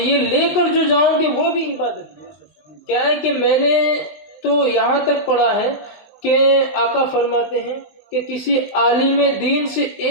لے کر جو جاؤں گے وہ بھی عبادت ہے. کیا ہے کہ میں نے تو یہاں تک پڑھا ہے کہ آقا فرماتے ہیں کہ کسی عالم دین سے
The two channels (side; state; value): right; late; 20 ms